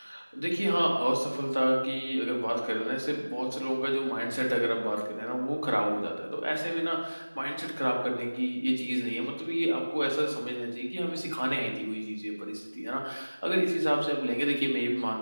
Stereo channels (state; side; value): inverted; both; correlation -1.00